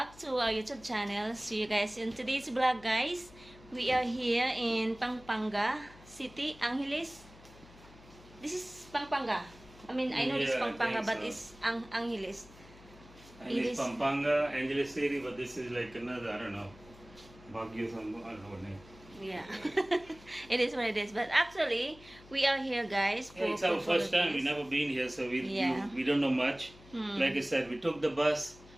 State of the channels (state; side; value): noise; left; hum, 22 dB below the sound